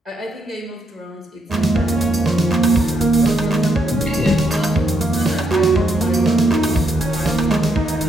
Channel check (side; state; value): both; normal; correlation 0.77